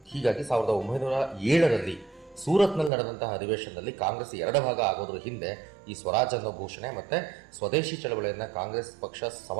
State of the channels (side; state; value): left; drops out; at 2.9 s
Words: ಹೀಗಾಗಿ 1907ರಲ್ಲಿ ಸೂರತ್ನಲ್ಲಿ ನಡೆದಂತಹ ಅಧಿವೇಶನದಲ್ಲಿ ಕಾಂಗ್ರೆಸ್ ಎರಡು ಭಾಗ ಆಗೋದ್ರ ಹಿಂದೆ ಈ ಸ್ವರಾಜ್ ಅನ್ನೋ ಘೋಷಣೆ ಮತ್ತು ಸ್ವದೇಶಿ ಚಳವಳಿಯನ್ನು ಕಾಂಗ್ರೆಸ್ ಪಕ್ಷ